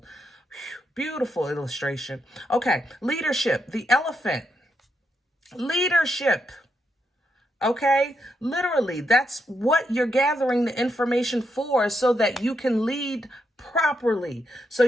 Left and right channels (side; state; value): both; normal; correlation 0.81